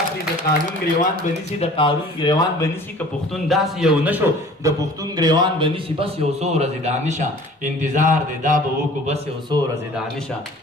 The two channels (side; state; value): both; normal; correlation 0.48